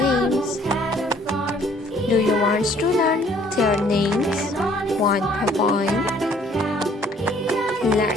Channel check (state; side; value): normal; both; correlation 0.59